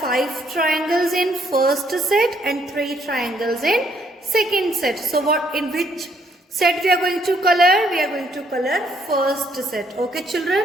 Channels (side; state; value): both; normal; correlation 0.69